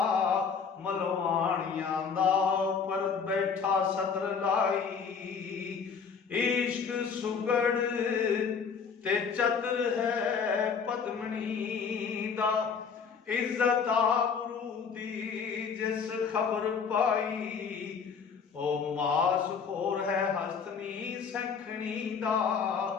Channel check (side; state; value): right; quieter; 6.0 dB